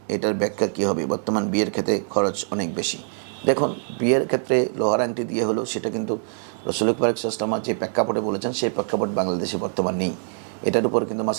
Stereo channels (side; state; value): left; silent; digital silence